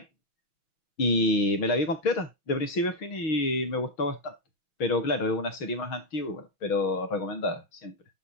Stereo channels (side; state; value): right; late; 6.1 ms